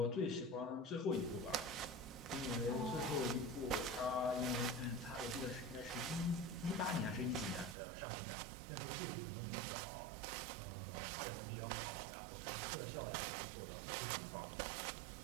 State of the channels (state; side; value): drops out; left; at 7.8 s